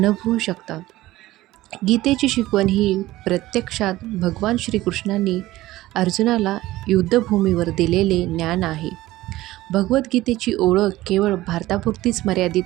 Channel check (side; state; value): left; quieter; 16.8 dB